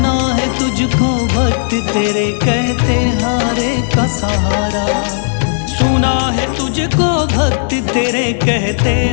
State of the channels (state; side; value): silent; right; digital silence